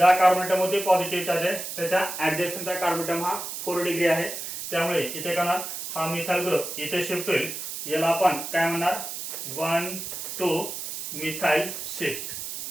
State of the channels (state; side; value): noise; right; hiss, 7 dB below the sound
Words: कार्बन मध्ये पॉझिटिव्ह चार्ज आहे त्याच्या ऍडजस्टचा कार्बन हा 4 डिग्री आहे, त्यामुळे इथे काय होणार, हा मिथाइल ग्रुप इथे शिफ्ट होईल. याला आपण काय म्हणणार, 1 to methyl shift,